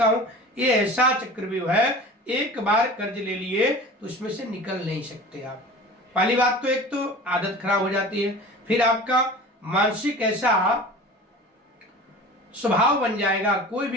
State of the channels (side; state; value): both; normal; correlation 0.39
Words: हूं, ये ऐसा चक्रव्यूह है, एक बार कर्ज ले लिए तो उसमें से निकल नहीं सकते आप। पहली बात तो एक तो आदत खराब हो जाती है, फिर आपका मानसिक ऐसा स्वभाव बन जाएगा, कोई